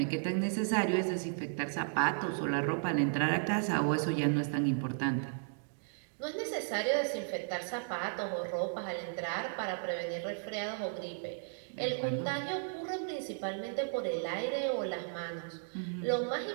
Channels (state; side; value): silent; left; digital silence